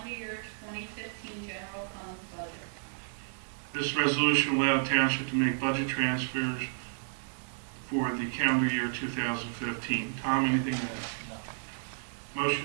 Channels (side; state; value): left; silent; 57 dB below the other